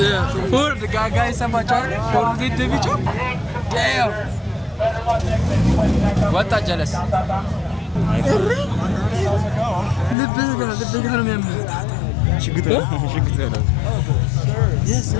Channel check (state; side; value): drops out; right; at 10.2 s